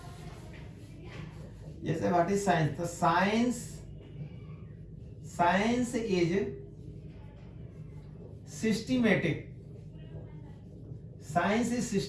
जैसे व्हाट इज साइंस, तो science is systematic, science is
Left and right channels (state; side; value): identical; both; correlation 1.00